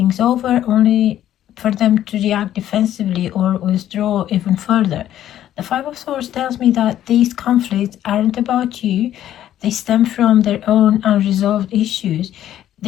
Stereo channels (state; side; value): quieter; right; 11.9 dB